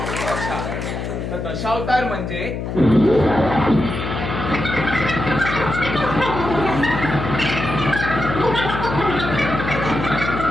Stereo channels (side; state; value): left; noise; hum, 5 dB below the sound